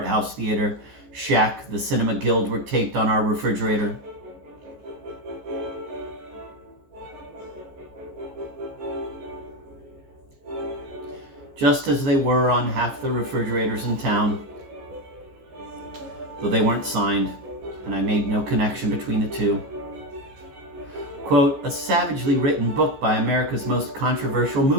house theater, Shack, the Cinema Guild, were taped on our refrigerator. Just as they were on half the refrigerators in town, though they weren't signed, and I made no connection between the two. Quote, a savagely written book by America's most controversial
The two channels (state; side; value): late; left; 14 ms